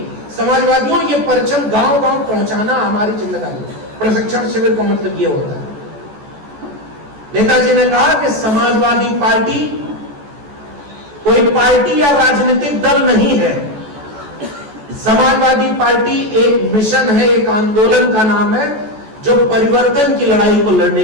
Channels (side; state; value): left; late; 14 ms